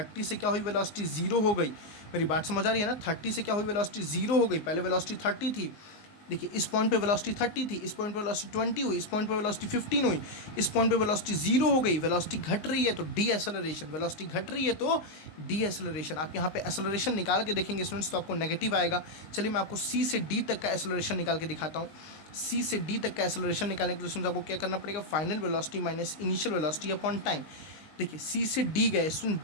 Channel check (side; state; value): right; late; 19 ms